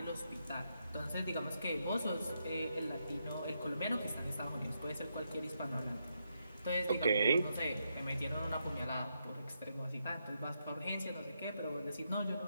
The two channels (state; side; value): inverted; both; correlation -0.81